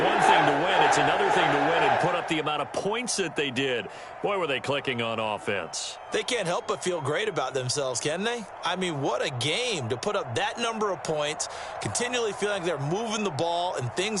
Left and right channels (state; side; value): identical; both; correlation 1.00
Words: thing to win. It's another thing to win and put up the amount of points that they did. Boy, were they clicking on offense. They can't help but feel great about themselves, can they? I mean, what a game to put up that number of points, continually feeling like they're moving the ball and